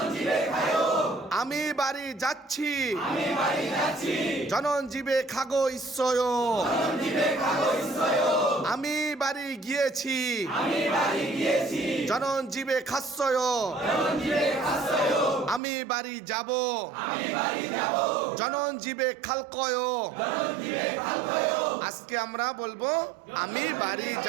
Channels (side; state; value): left; drops out; at 15.6 s